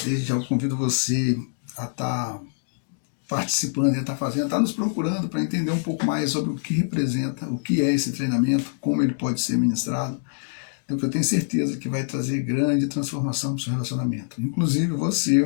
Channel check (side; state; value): right; silent; digital silence